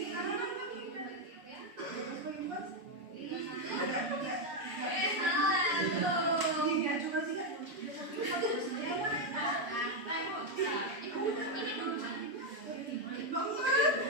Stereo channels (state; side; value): late; left; 7.0 ms